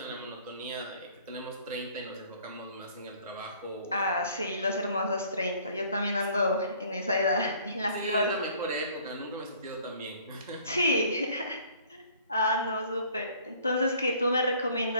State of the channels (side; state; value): both; inverted; correlation -0.55